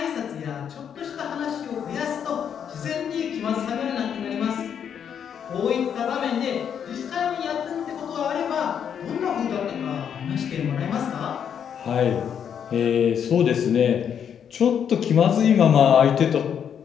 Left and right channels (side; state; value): right; quieter; 8.2 dB